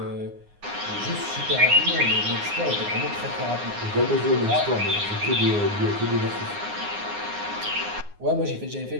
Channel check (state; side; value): late; left; 9.6 ms